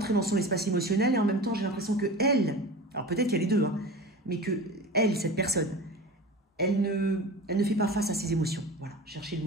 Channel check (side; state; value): both; normal; correlation 0.33